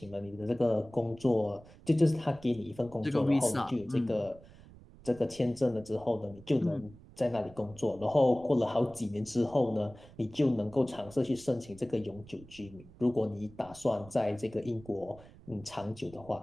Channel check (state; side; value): noise; right; rumble, 21 dB below the sound